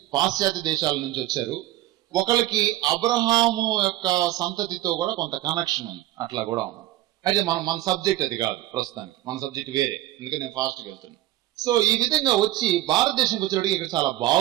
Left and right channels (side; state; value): left; quieter; 15.4 dB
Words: పాశ్చాత్య దేశాల నుంచి వచ్చారు. ఒకరికి అబ్రహాము యొక్క సంతతితో కూడా కొంత కనెక్షన్ ఉంది, అట్లా కూడా ఉంది. అయితే మన సబ్జెక్ట్ అది కాదు ప్రస్తుతానికి, మన సబ్జెక్ట్ వేరే, అందుకని నేను ఫాస్ట్గా వెళ్తున్నాను. సో ఈ విధంగా వచ్చి భారతదేశంకి వచ్చేటికి ఇక్కడ చాలా